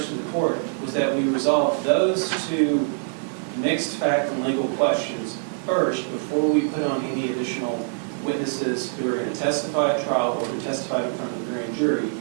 to the court was that we resolve those two mixed fact and legal questions first before we put on any additional witnesses who are going to testify at trial or who testified in front of the grand jury,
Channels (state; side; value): silent; left; digital silence